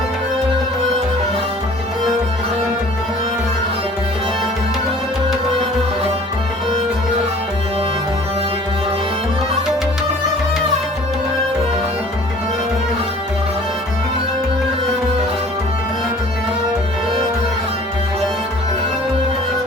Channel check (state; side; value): normal; both; correlation 0.50